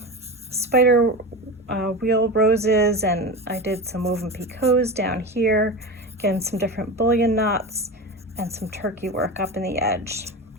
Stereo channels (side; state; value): both; normal; correlation 0.25